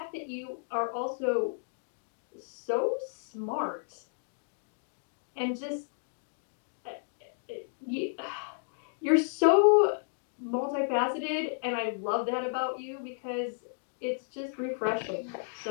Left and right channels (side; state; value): right; silent; digital silence